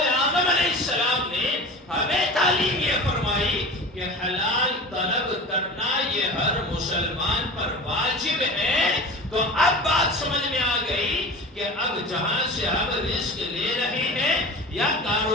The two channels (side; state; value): both; normal; correlation 0.34